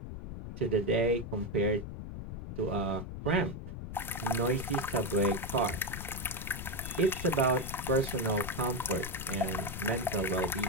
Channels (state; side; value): noise; left; rumble, 8 dB below the sound